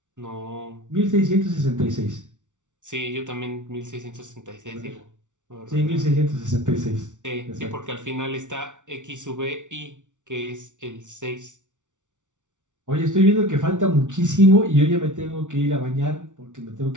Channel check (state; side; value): late; left; 0.86 ms